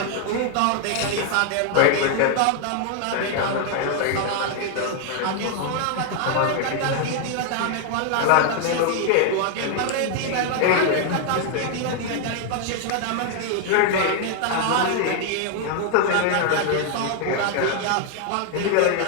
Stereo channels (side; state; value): both; different; correlation 0.00